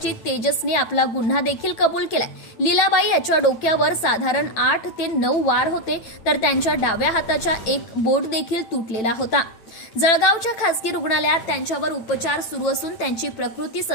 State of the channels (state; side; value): late; right; 9.0 ms